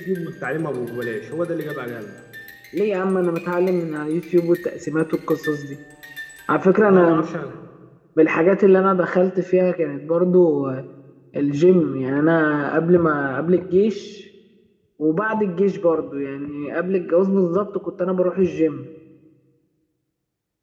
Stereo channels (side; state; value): both; identical; correlation 1.00